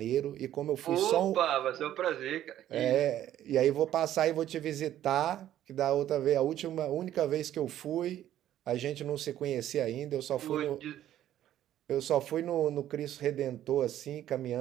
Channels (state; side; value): quieter; left; 12.1 dB